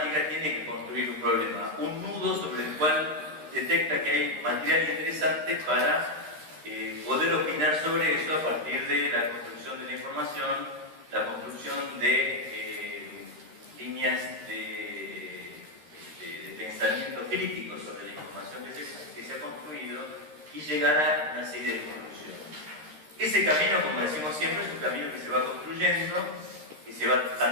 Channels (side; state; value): left; late; 13 ms